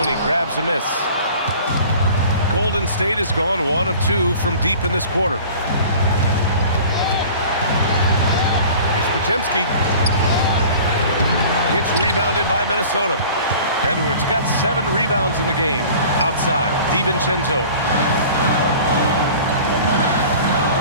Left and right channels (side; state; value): both; inverted; correlation -0.44